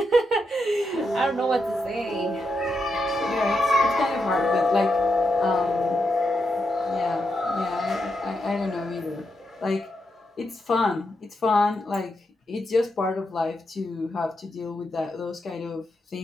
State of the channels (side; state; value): both; normal; correlation 0.84